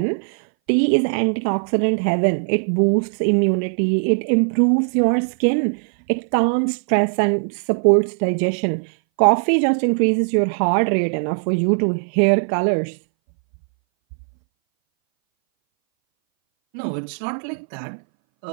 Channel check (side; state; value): left; silent; 62 dB below the other